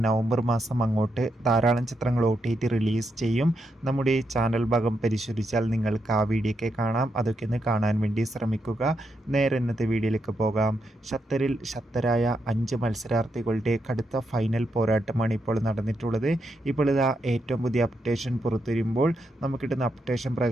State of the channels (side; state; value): both; normal; correlation 0.82